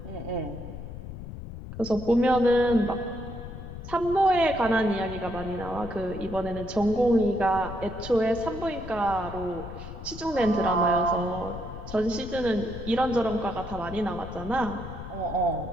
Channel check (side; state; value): left; noise; rumble, 11 dB below the sound